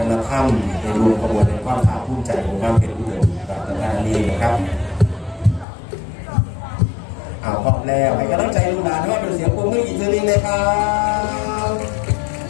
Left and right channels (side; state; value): right; drops out; at 5.7 s